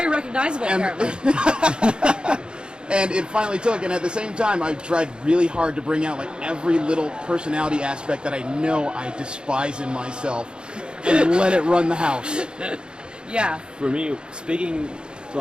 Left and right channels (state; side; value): late; left; 0.051 ms